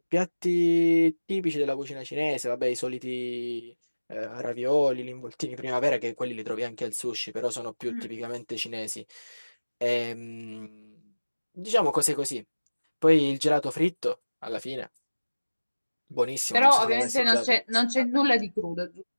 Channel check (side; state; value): both; inverted; correlation -1.00